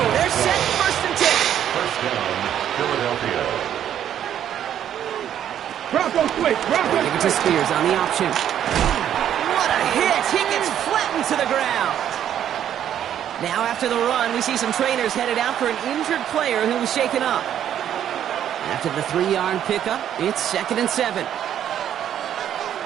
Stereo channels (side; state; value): left; quieter; 10.2 dB